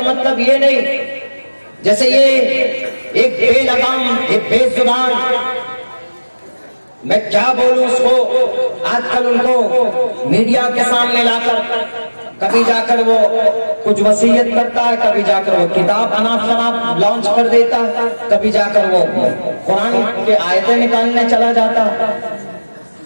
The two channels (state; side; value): inverted; both; correlation -1.00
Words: مطلب یہ نہیں جیسے یہ ایک بے لگام، ایک بے زبان، میں کیا بولوں اس کو، آج کل ان کو میڈیا کے سامنے لا کر کبھی جا کر وہ کچھ وصیت کرتا ہے، کبھی جا کر وہ کتاب اناپ شناپ لانچ کر دیتا ہے، کبھی جا کر وہ قرآن کے آیتیں نکالنے چلا جاتا،